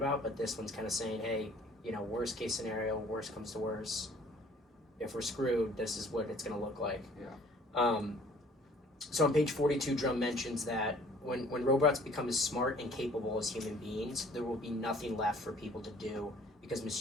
But this one's kind of saying, hey, worst case scenario, worst comes to worst. If we're screwed, this is what it's going to look like. Yeah. So on page 42, Drum mentions that when robots become as smart and capable as human beings, there will be nothing left for people to do because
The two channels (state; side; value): normal; both; correlation 0.55